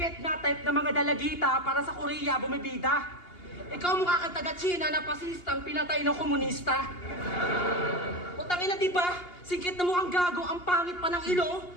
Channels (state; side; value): late; right; 2.8 ms